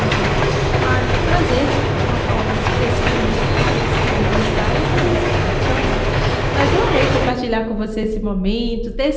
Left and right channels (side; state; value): both; identical; correlation 1.00